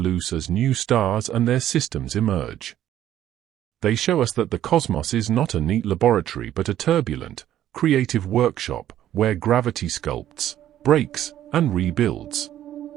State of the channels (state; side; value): quieter; left; 12.0 dB